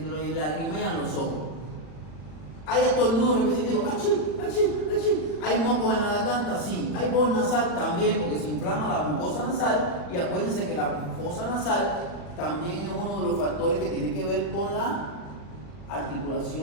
lagrimean los ojos. ¿Hay estornudos repetitivos? ¡Achí! ¿Hay mocos en la garganta? Sí. ¿Hay voz nasal? También, porque se inflama la mucosa nasal. Y acuérdense que la mucosa nasal también es uno de los factores que tiene que ver con la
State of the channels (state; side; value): late; right; 40 ms